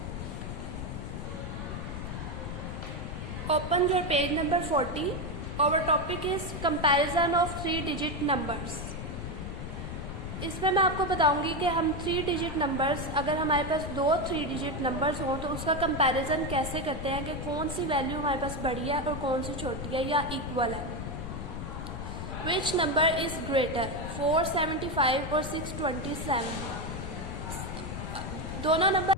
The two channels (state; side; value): noise; left; rumble, 6 dB below the sound